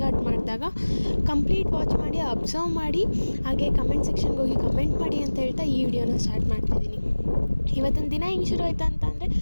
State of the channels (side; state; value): both; inverted; correlation -1.00